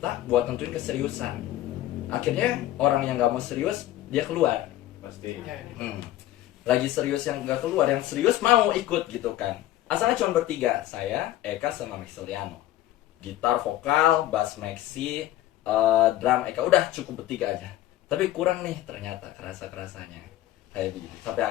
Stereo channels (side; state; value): right; quieter; 14.3 dB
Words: buat nentuin keseriusan. Akhirnya orang yang nggak mau serius dia keluar. Pasti. Ya, Lagi serius yang nggak keluar, yang serius mau ikut gitu kan. Asalnya cuma bertiga, saya, Eka sama Maxiliano. Gitar, vokal, bass Maxi, drum Eka, udah cukup bertiga aja. Tapi kurang nih ternyata kerasanya kayak begitu. Sampai